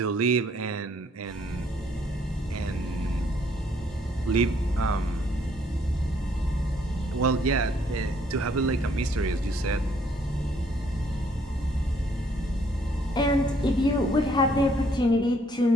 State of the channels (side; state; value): both; normal; correlation 0.65